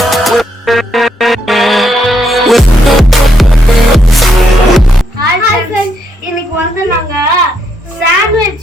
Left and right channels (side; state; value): both; normal; correlation 0.77